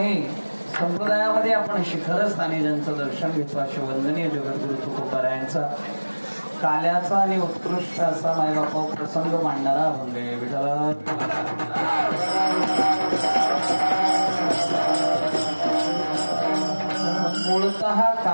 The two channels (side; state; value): both; inverted; correlation -1.00